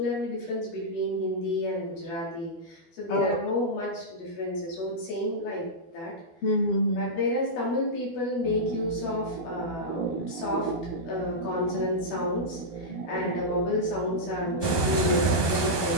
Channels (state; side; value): late; right; 12 ms